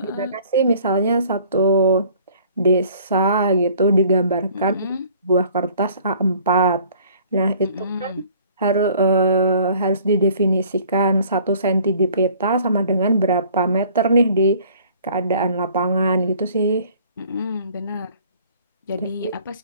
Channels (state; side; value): inverted; both; correlation -0.55